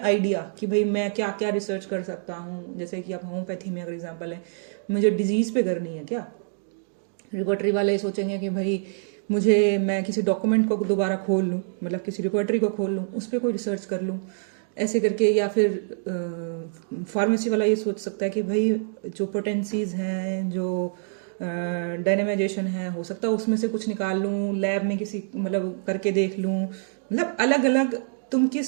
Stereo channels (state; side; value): silent; left; digital silence